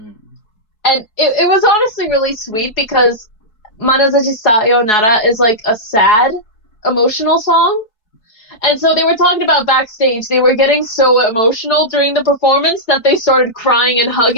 And it was honestly really sweet because Manazashi Sayonara is like a sad, emotional song. And so they were talking about backstage. They were getting so emotional during the performance that they started crying and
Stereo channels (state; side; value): late; right; 4.6 ms